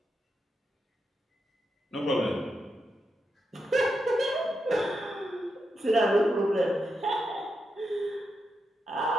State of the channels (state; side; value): normal; both; correlation 0.85